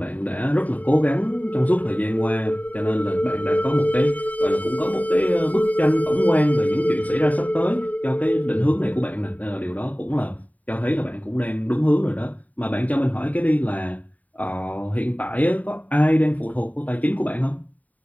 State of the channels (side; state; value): right; late; 0.073 ms